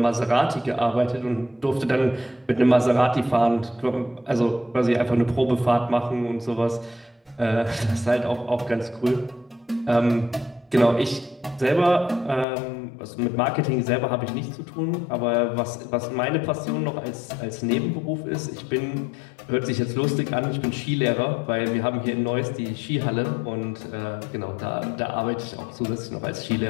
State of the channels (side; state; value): right; drops out; at 12.5 s